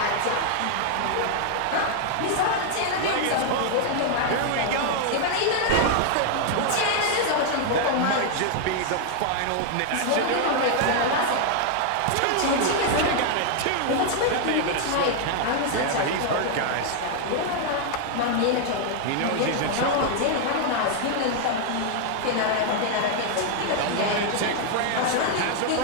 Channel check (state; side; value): different; both; correlation 0.00